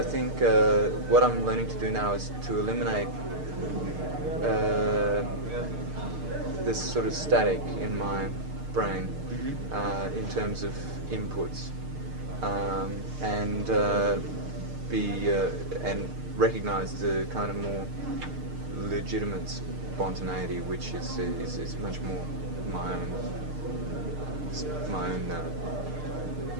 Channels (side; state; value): left; late; 6.6 ms